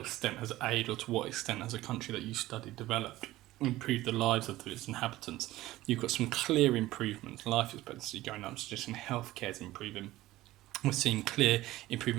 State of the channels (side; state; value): left; quieter; 16.6 dB